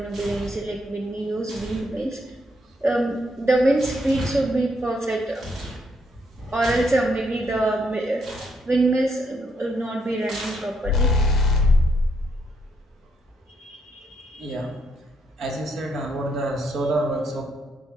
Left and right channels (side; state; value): both; normal; correlation 0.75